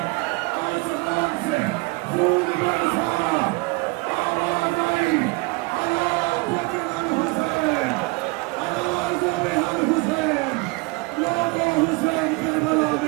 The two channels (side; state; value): left; quieter; 26.2 dB